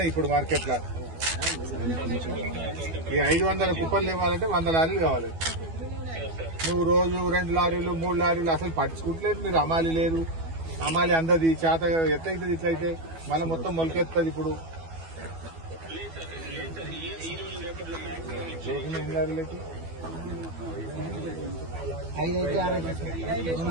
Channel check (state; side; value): late; left; 12 ms